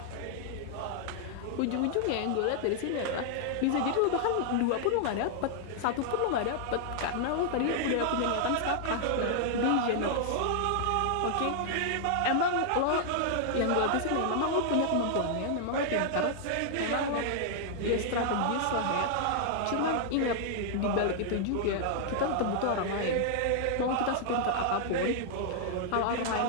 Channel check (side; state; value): both; different; correlation -0.01